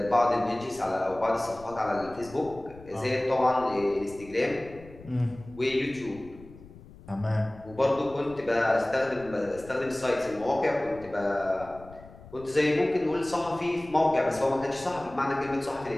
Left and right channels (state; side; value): noise; left; rumble, 19 dB below the sound